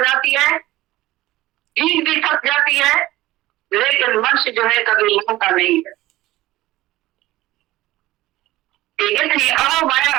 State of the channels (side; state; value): left; quieter; 17.0 dB